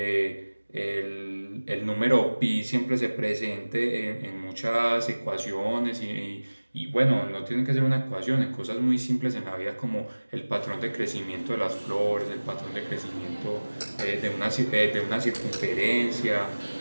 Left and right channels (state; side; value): inverted; both; correlation -1.00